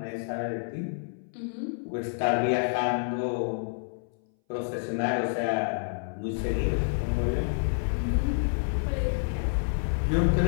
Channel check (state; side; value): silent; right; 59 dB below the other